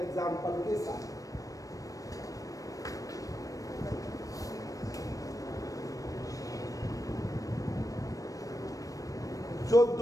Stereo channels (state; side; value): late; right; 0.16 ms